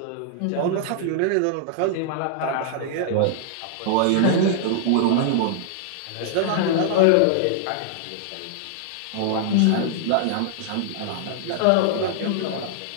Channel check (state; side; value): different; both; correlation -0.01